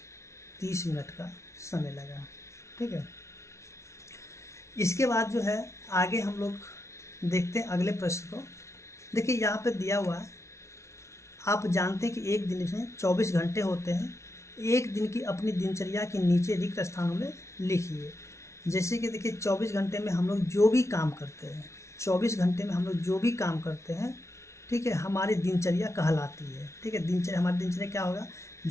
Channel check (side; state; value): right; late; 0.13 ms